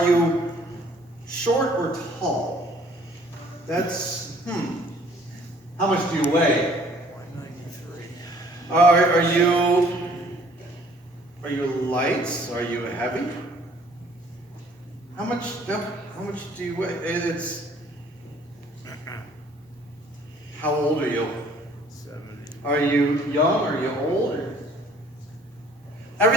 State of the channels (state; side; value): normal; both; correlation 0.57